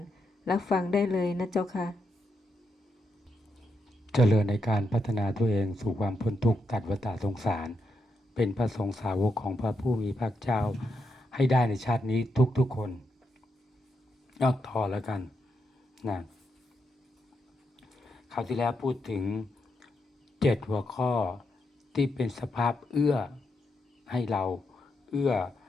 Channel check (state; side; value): normal; both; correlation 0.82